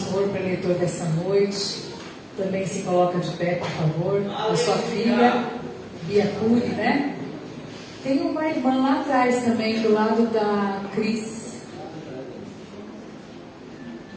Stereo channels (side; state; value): both; identical; correlation 1.00